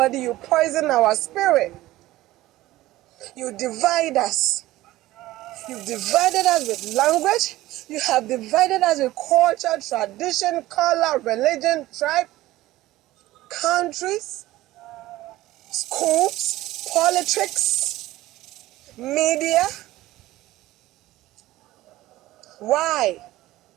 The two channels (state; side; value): quieter; left; 16.7 dB